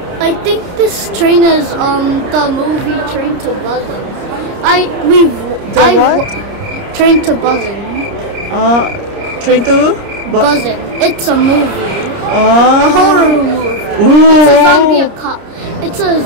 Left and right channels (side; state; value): left; late; 29 ms